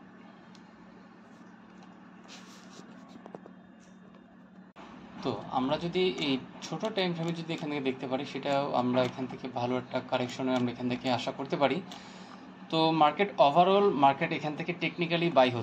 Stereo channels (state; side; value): identical; both; correlation 1.00